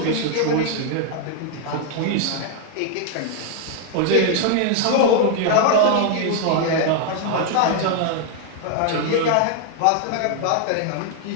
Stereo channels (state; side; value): different; both; correlation 0.00